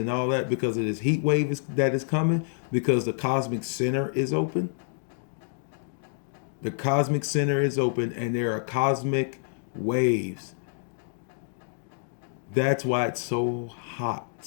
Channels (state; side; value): silent; right; digital silence